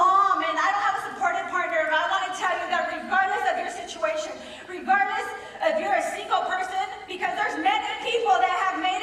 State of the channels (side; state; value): both; identical; correlation 1.00